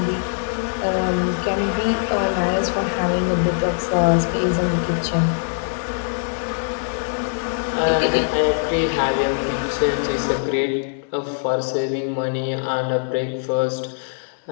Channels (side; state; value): right; silent; digital silence